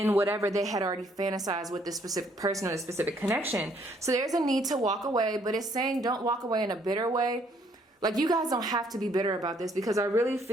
whatever they had already fantasized with this specific person or this specific connection. So there's a need to walk away, but it's saying don't walk away in a bitter way. Like, you guys don't have to be bitter about this, because I really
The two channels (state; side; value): normal; both; correlation 0.66